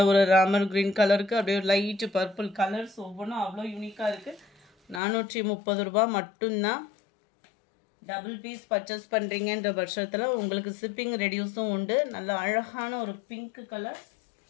ஒரு ராமர் கிரீன் கலருக்கு அப்படியே லைட் பர்பிள் கலர்ஸ் ஒவ்வொன்றும் அவ்வளோ யூனிக்காக இருக்குது. 430 ரூபா மட்டும்தான். டபுள் பீஸ் பர்ச்சேஸ் பண்ணுறீங்கன்ற பட்சத்தில் உங்களுக்கு ஷிப்பிங் ரெடியூஸும் உண்டு. நல்ல அழகான ஒரு பிங்க் கலர்,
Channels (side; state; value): right; drops out; at 5.0 s